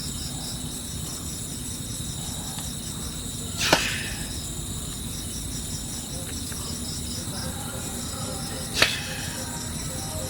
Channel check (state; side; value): identical; both; correlation 1.00